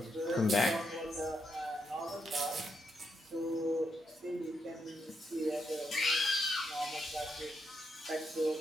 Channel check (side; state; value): both; normal; correlation 0.80